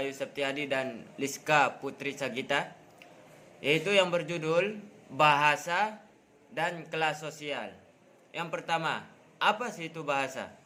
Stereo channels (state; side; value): identical; both; correlation 1.00